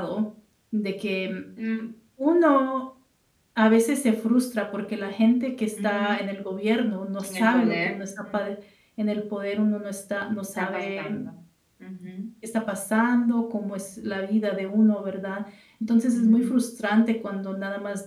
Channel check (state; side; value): identical; both; correlation 1.00